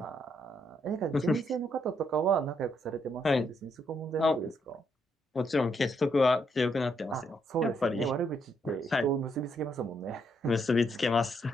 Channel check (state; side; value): normal; both; correlation 0.75